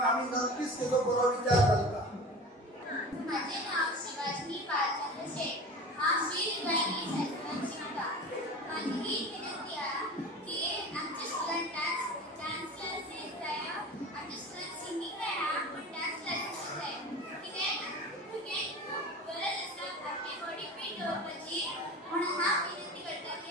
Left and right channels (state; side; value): normal; both; correlation 0.34